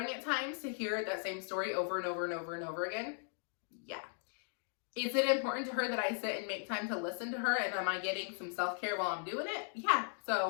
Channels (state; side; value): silent; right; 53 dB below the other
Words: at times to hear that same story over and over and over and over again? Yeah. Is it important to her that I sit and make time to listen to her, and am I getting some self-care while I'm doing it? Yeah.